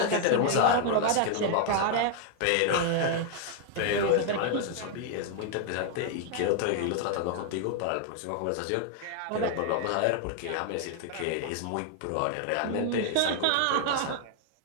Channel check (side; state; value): both; different; correlation 0.00